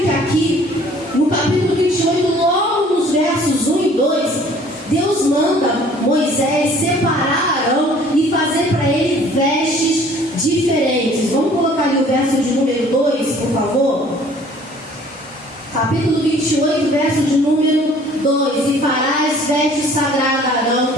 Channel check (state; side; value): normal; both; correlation 0.54